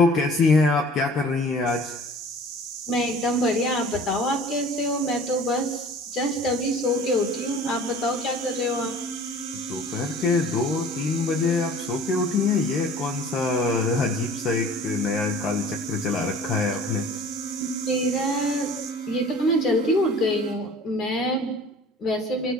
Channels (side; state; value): both; normal; correlation 0.46